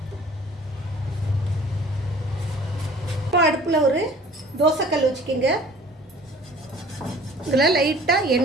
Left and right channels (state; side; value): normal; both; correlation 0.49